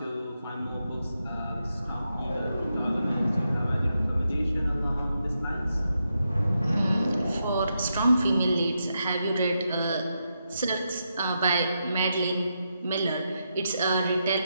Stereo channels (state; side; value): inverted; both; correlation -0.84